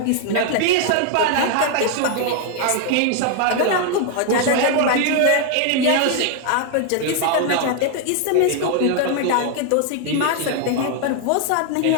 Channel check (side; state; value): both; different; correlation 0.00